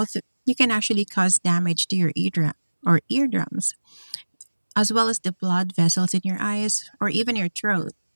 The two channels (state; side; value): inverted; both; correlation -1.00